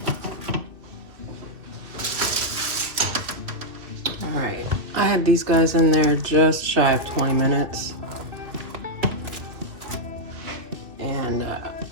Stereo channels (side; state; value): left; late; 2.7 ms